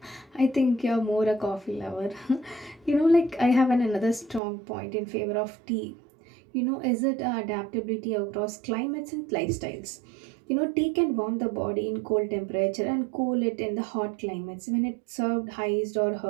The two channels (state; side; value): drops out; left; at 4.4 s